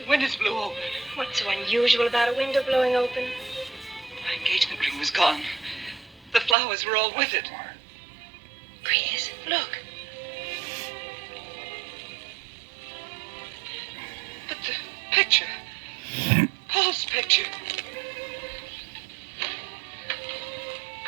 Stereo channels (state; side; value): drops out; left; at 6.6 s